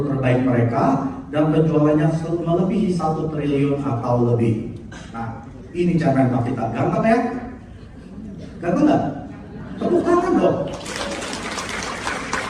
terbaik mereka dan penjualannya melebihi 1 triliun atau lebih. Nah, ini cara kita. Ganteng ya? Ganteng nggak? Tepuk tangan dong.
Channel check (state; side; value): identical; both; correlation 1.00